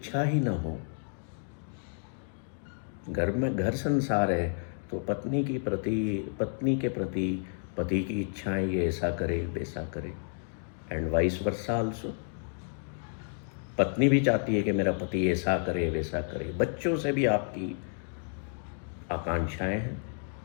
ही ना हो? घर में घर संसार है तो पत्नी के प्रति पति की इच्छाएं, ये ऐसा करे वैसा करे, एंड वाइस वर्सा आल्सो। पत्नी भी चाहती है कि मेरा पति ऐसा करे वैसा करे। बच्चों से भी आपकी आकांक्षाएं हैं,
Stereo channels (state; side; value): silent; right; 57 dB below the other